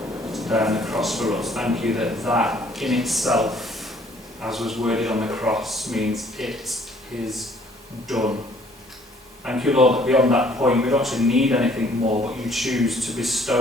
to die on the cross for us. Thank you that that in itself, as was worded on the cross, means it is done. Thank you, Lord, that beyond that point we don't actually need anything more, but you choose to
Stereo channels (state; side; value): normal; both; correlation 0.59